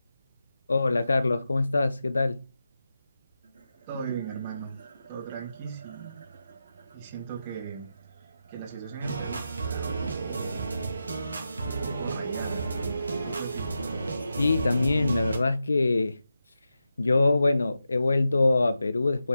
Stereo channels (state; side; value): inverted; both; correlation -0.90